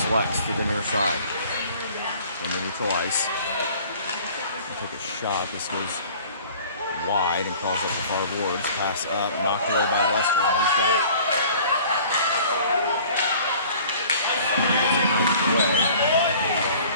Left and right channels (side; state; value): both; inverted; correlation -0.49